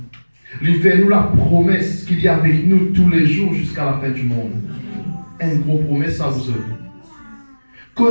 Il fait nous la promesse qu'il y a avec nous tous les jours jusqu'à la fin du monde. Une grosse promesse à vous autres.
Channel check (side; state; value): both; inverted; correlation -1.00